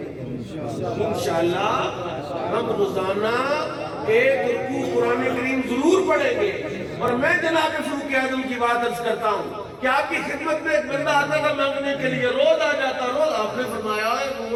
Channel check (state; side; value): identical; both; correlation 1.00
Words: انشاءاللہ ہم روزانہ ایک رکوع قرآن کریم ضرور پڑھیں گے. اور میں جناب فاروق اعظم کی بات عرض کرتا ہوں کہ آپ کی خدمت میں ایک بندہ آتا تھا مانگنے کے لیے, روز آ جاتا. روز آپ نے فرمایا ہے